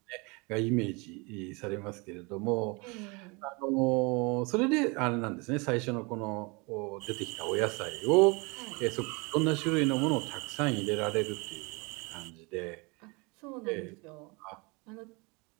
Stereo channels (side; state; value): left; quieter; 28.6 dB